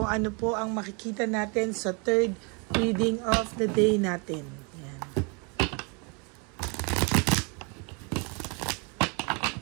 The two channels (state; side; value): quieter; left; 32.9 dB